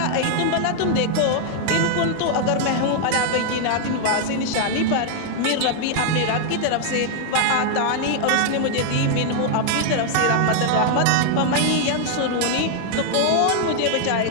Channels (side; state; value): both; different; correlation 0.00